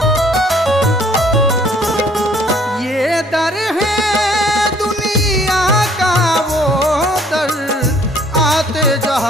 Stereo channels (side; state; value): both; normal; correlation 0.60